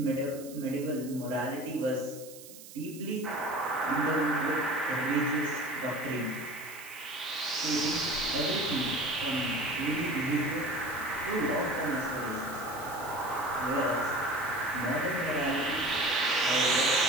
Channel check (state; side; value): noise; right; hiss, 16 dB below the sound